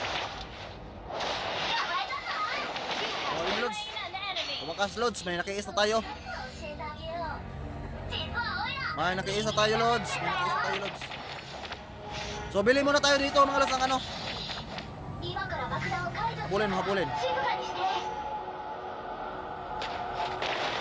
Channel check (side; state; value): both; identical; correlation 1.00